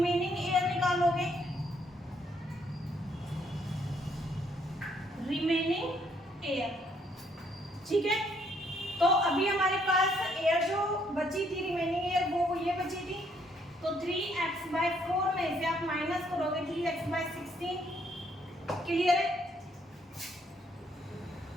एयर निकालोगे, रिमेनिंग एयर। ठीक है, तो अभी हमारे पास एयर जो बची थी, रिमेनिंग एयर, वो ये बची थी, तो 3x/4 में से आप माइनस करोगे 3x/16। क्लियर है?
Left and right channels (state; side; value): normal; both; correlation 0.69